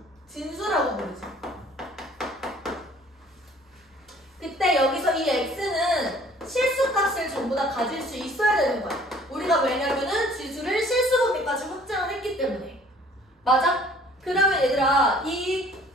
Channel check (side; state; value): both; normal; correlation 0.54